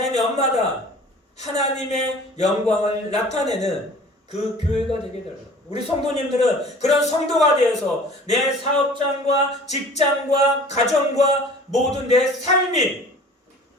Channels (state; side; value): normal; both; correlation 0.46